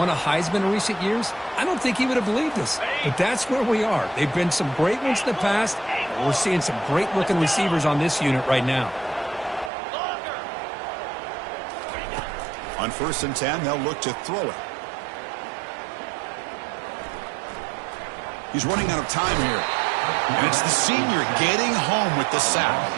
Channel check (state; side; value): drops out; left; at 9.7 s